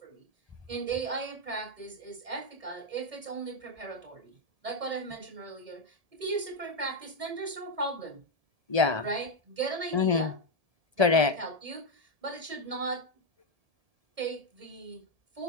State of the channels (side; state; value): left; late; 1.7 ms